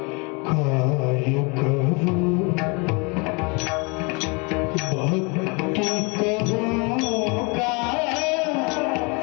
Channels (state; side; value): quieter; right; 30.7 dB